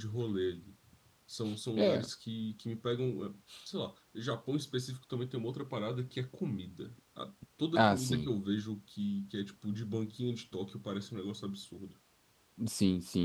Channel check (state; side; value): identical; both; correlation 1.00